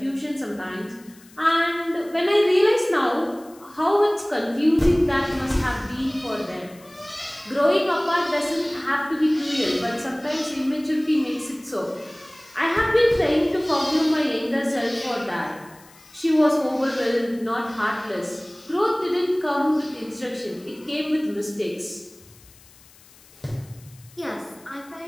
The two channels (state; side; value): noise; left; hiss, 25 dB below the sound